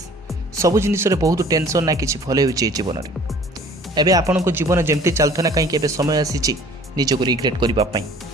ସବୁ ଜିନିଷରେ ବହୁତ ଟେନସନ୍, ନା କିଛି ଭଲ ହେଉଛି ଏ ଜୀବନରେ। ଏବେ ଆପଣଙ୍କ ଜୀବନ ଯେମିତି ଚାଲୁଥିଲା, କାହିଁକି ଏବେ ସମୟ ଆସିଛି ନିଜକୁ ରିଗ୍ରେଟ୍ କରିବା ପାଇଁ,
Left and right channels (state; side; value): normal; both; correlation 0.51